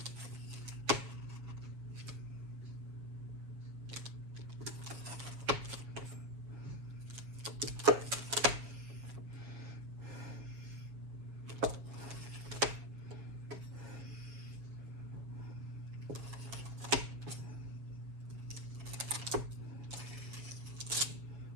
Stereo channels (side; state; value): left; late; 7.3 ms